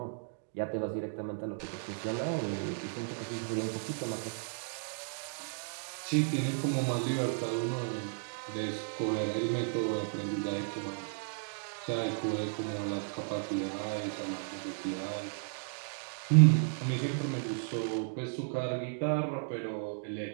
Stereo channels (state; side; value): silent; left; digital silence